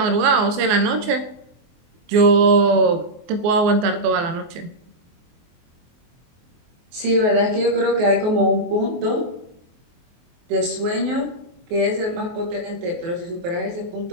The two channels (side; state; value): left; late; 24 ms